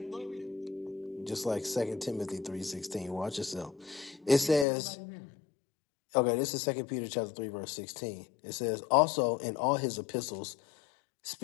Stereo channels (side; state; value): right; drops out; at 4.7 s